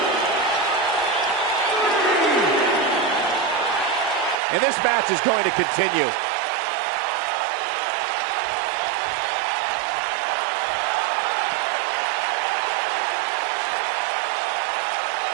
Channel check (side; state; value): left; drops out; at 4.4 s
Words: And this match is going to continue.